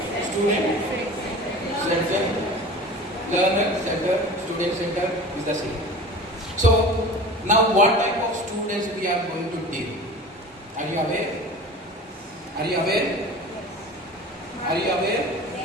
center, learner center, student center is the same. So now what type of students we are going to deal? Are you aware? Are you aware? Are you aware?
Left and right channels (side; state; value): both; normal; correlation 0.38